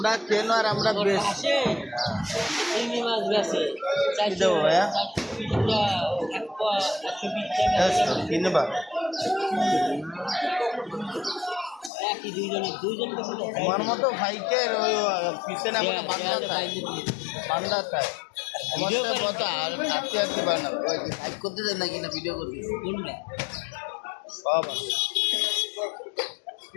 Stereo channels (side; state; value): right; drops out; at 11.9 s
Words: কেন আর আমরা বেশ দেবো ভাইয়া কিনবা। আমার মতো ভাইকে ওই পিছনে আমাকে বান্ধা থাকে আমার কত আর আটকে আটকে বানাবো লাইক করতে দেয় নাকি না ভিডিও করতে সব